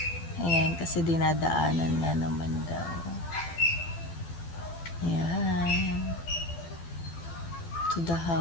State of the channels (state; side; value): late; right; 12 ms